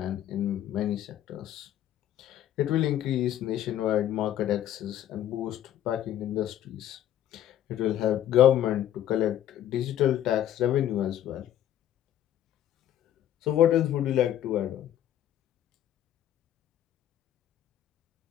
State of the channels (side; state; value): right; quieter; 11.5 dB